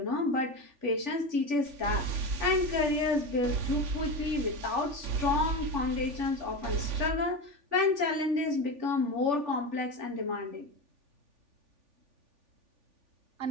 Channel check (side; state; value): left; late; 3.5 ms